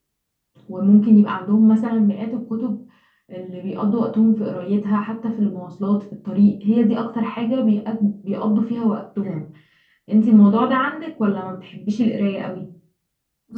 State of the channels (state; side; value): identical; both; correlation 1.00